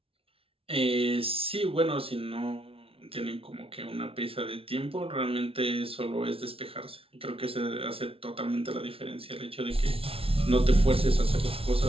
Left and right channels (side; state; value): left; late; 0.27 ms